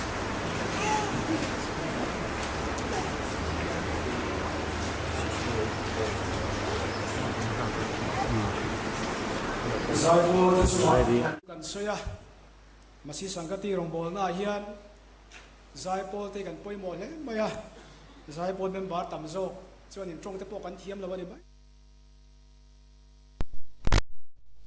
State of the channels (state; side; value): identical; both; correlation 1.00